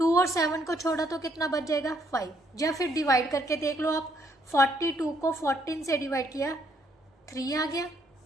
और 7 को छोड़ा तो कितना बच जाएगा 5, या फिर डिवाइड करके देख लो आप, 42 को 14 से डिवाइड किया 3 आ गया,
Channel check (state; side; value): normal; both; correlation 0.70